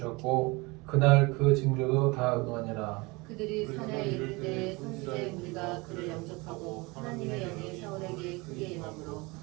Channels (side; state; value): left; quieter; 25.2 dB